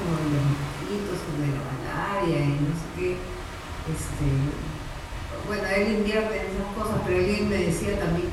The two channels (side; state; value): both; identical; correlation 1.00